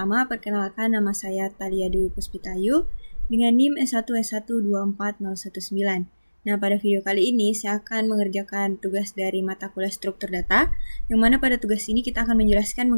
perkenalkan nama saya Thalia Dwi Puspitayu dengan NIM S1S1240119. Nah, pada video kali ini saya akan mengerjakan tugas dari mata kuliah struktur data, yang mana pada tugas ini kita akan menjelaskan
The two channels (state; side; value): inverted; both; correlation -1.00